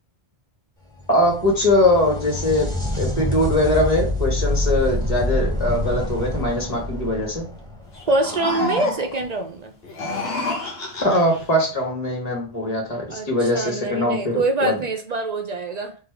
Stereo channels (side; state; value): left; late; 1.9 ms